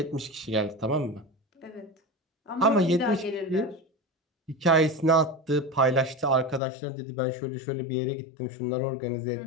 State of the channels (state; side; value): drops out; right; at 6.6 s